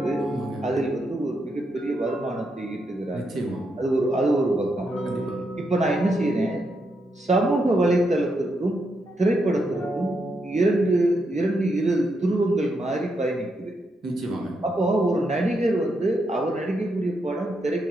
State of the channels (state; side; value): normal; both; correlation 0.81